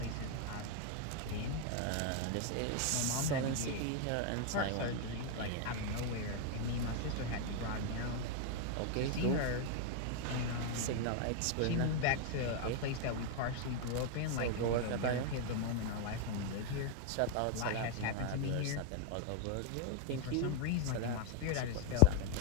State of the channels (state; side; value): different; both; correlation 0.00